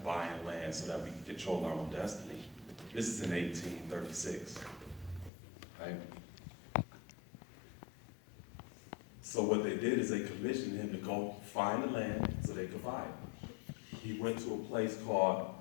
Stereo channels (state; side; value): drops out; right; at 5.3 s